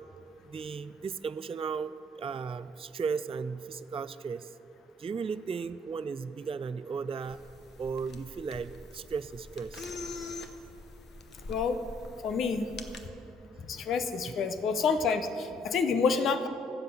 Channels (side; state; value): both; normal; correlation 0.64